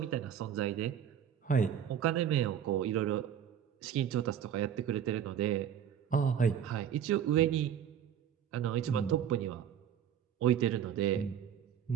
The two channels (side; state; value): left; quieter; 9.2 dB